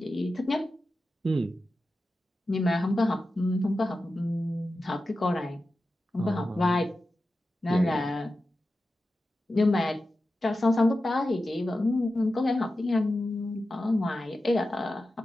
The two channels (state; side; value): normal; both; correlation 0.92